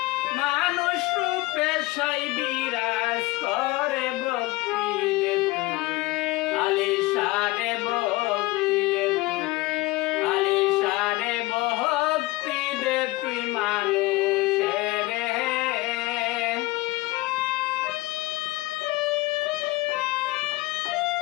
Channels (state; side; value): quieter; right; 20.4 dB